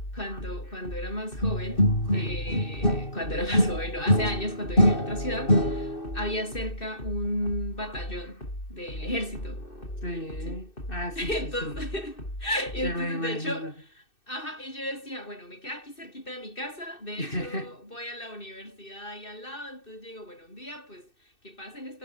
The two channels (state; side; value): late; right; 2.6 ms